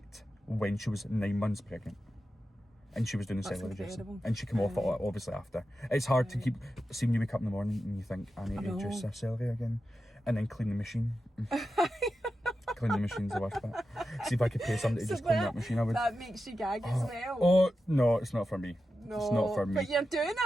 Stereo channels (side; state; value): both; normal; correlation 0.91